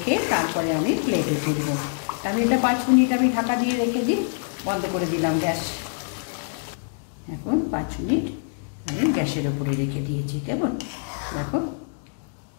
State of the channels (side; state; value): right; silent; digital silence